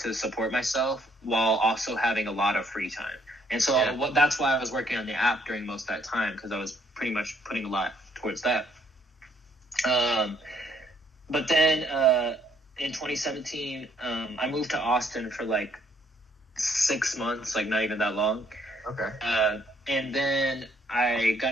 support myself while also having a lot of free time. And so that's why I was working on the app during most of that time, because I was pretty much putting a lot towards that. But then in 2017, I moved to Austin for like 6 months, like not even that long. Okay. And then I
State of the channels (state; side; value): normal; both; correlation 0.66